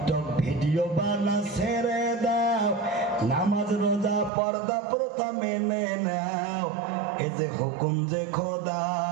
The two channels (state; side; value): drops out; left; at 4.3 s